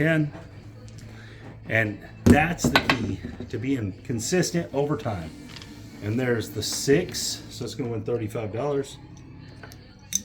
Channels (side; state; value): both; identical; correlation 1.00